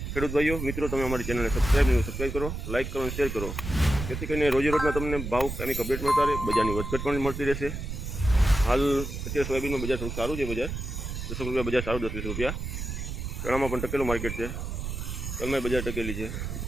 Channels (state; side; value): noise; right; rumble, 5 dB below the sound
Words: ખેડૂત ભાઈઓ મિત્રો, તમે અમારી ચેનલને સબસ્ક્રાઈબ કરો, લાઇક કરો અને શેર કરો, જેથી કરીને રોજે રોજના તમને ભાવ કામિક અપડેટ મળતા રહે, બજારની વધઘટ પણ મળતી રહેશે। હાલ અત્યારે સોયાબીનમાં બજાર થોડું સારું છે, બજાર 10 રૂપિયા બજાર સારું, 10-20 રૂપિયા। ચણામાં પણ ટકેલું માર્કેટ છે, તલમાં બજાર ટકેલી છે।